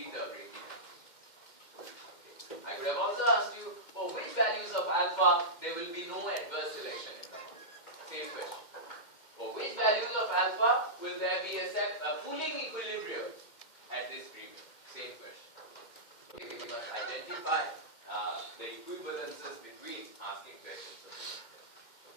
the break-even. I could have also asked you, for which values of alpha there will be no adverse selection in the market. Same question. For which values of alpha will there be a pooling equilibrium at this premium? Same question. Okay, we must identify the equivalences between asking questions of this.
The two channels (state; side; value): late; right; 2.1 ms